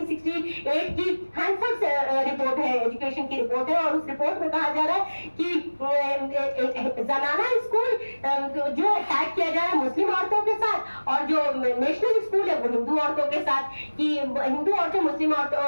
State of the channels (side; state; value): both; inverted; correlation -1.00